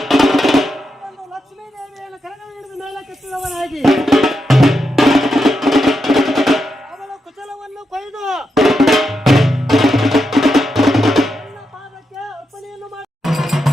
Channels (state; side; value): normal; both; correlation 0.85